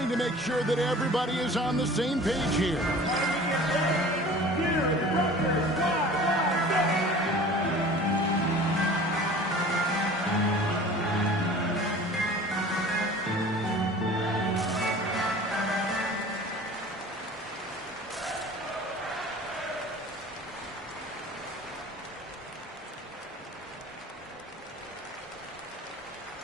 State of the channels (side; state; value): both; normal; correlation 0.43